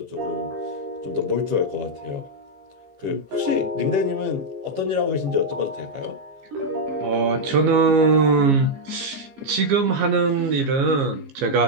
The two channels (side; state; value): left; late; 15 ms